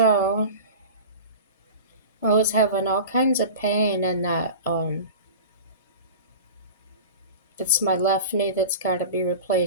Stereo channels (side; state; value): both; inverted; correlation -0.34